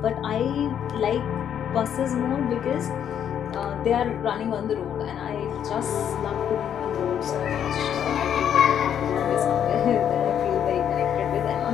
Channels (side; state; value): right; quieter; 9.1 dB